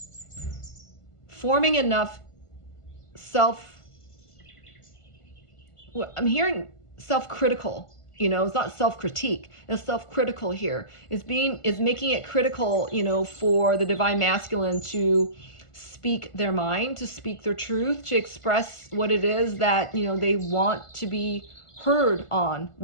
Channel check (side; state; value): right; late; 1.5 ms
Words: enough I'm hearing self-critical, it's not self-critique, it's self-critical here. It's making it critical, for the divine masculine to speak their mind, to speak their truth, to express what it is that, they want to be heard on,